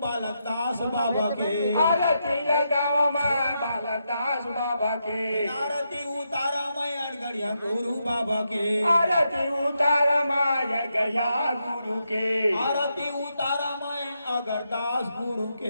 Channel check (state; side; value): inverted; both; correlation -0.83